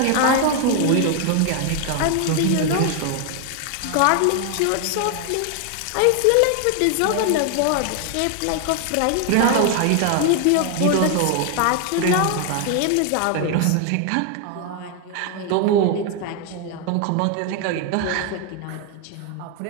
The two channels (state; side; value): different; both; correlation 0.00